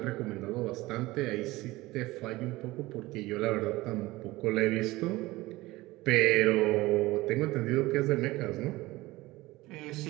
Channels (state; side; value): quieter; left; 19.4 dB